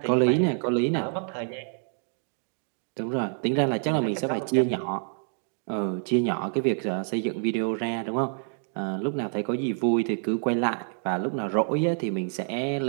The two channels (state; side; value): silent; left; 56 dB below the other